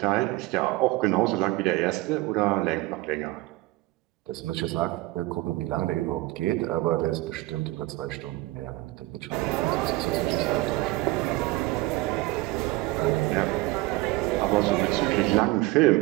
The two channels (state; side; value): quieter; left; 20.0 dB